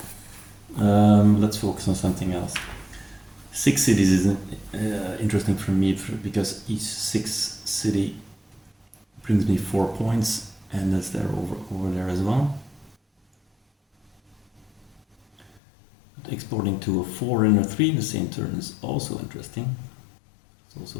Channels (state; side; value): drops out; right; at 15.6 s